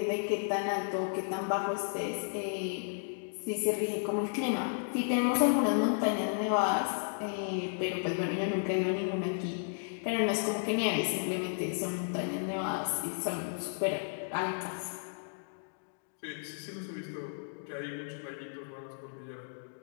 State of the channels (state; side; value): silent; right; digital silence